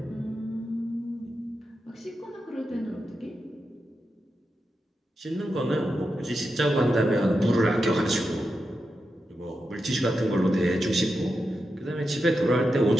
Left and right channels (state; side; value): normal; both; correlation 0.88